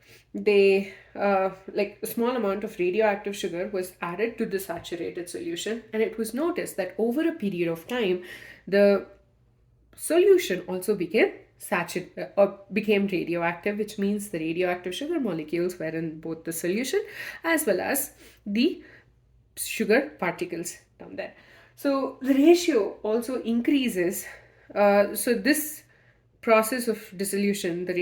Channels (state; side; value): identical; both; correlation 1.00